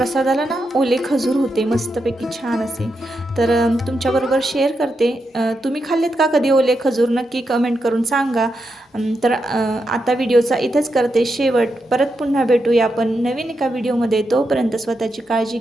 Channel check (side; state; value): both; normal; correlation 0.85